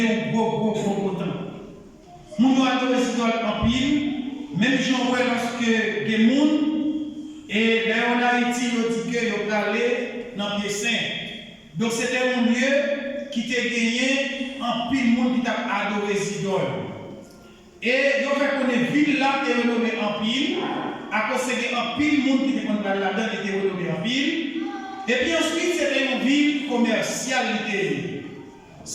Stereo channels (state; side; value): identical; both; correlation 1.00